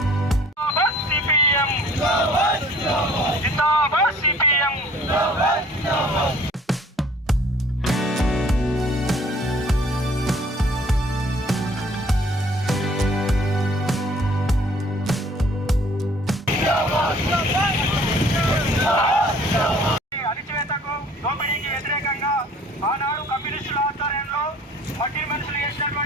జిందాబాద్ సిపిఎం. అణచివేతకు దోపిడీకి వ్యతిరేకంగా ఆనాడు కమ్యూనిస్టుల ఆధ్వర్యంలో మట్టి మనుషులు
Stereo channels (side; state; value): both; normal; correlation 0.54